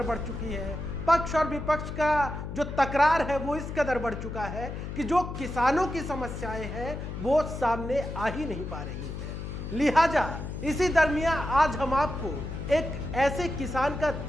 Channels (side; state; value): left; noise; hum, 7 dB below the sound